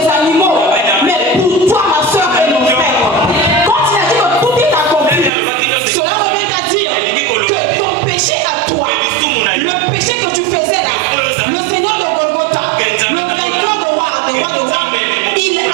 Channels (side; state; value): left; drops out; at 5.3 s